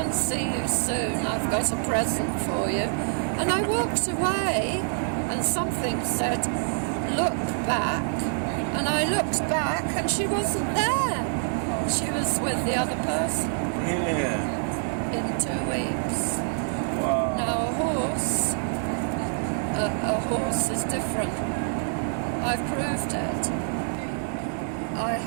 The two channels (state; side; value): silent; left; digital silence